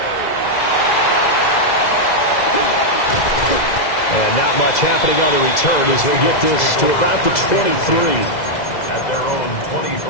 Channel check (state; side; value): late; right; 2.0 ms